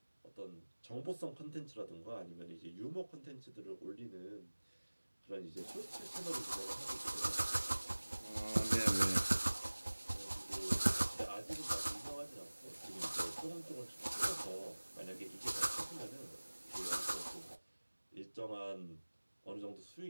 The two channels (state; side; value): inverted; both; correlation -1.00